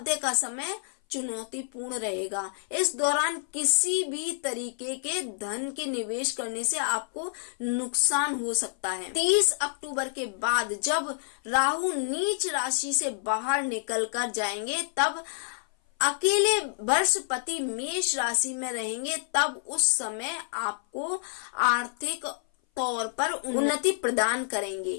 का समय चुनौतीपूर्ण रहेगा। इस दौरान किसी भी तरीके के धन के निवेश करने से आपको नुकसान हो सकता है। 30 अक्टूबर के बाद जब राहु नीच राशि से बाहर निकल कर जाएंगे तब अकेले बृहस्पति मेष राशि में रहेंगे, तब उस समय आपको आर्थिक तौर पर उन्नति प्रदान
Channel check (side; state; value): right; silent; 57 dB below the other